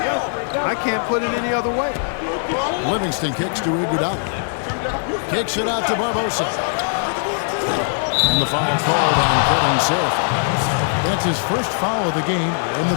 can't put it any other way. Livingston kicks to Iguodala. Kicks it out to Barbosa. And the foul called on Kevin Seraphin. That's his first foul of the game, and the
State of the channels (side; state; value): right; silent; digital silence